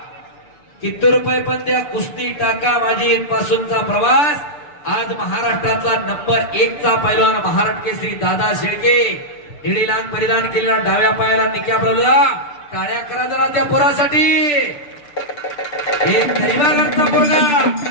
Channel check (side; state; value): right; late; 6.8 ms